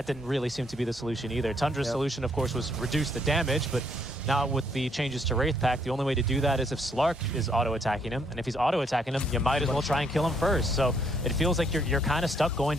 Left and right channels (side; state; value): both; normal; correlation 0.70